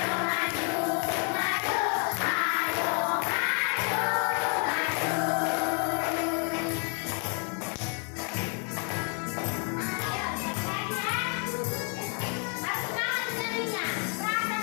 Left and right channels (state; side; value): quieter; right; 39.6 dB